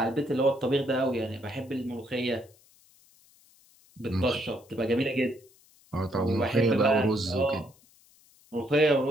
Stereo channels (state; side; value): noise; left; hiss, 29 dB below the sound